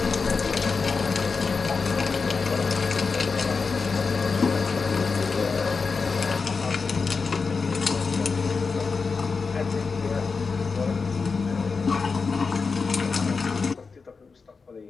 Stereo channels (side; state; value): right; quieter; 4.8 dB